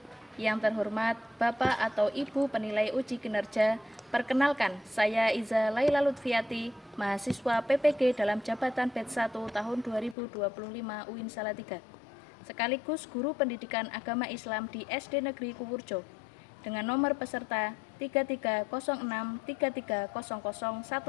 Yang terhormat Bapak atau Ibu penilai uji kinerja, perkenalkan saya Iza Laila Lutfiati, mahasiswa PPG dalam jabatan Batch 1 tahun 2025 UIN Salatiga, sekaligus guru pendidikan agama Islam di SD Negeri Kuwurjo, dengan nomor peserta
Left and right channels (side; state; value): right; drops out; at 10.2 s